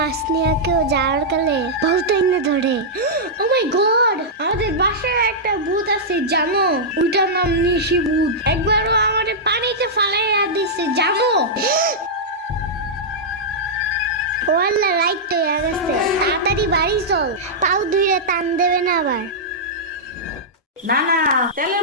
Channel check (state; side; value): normal; both; correlation -0.10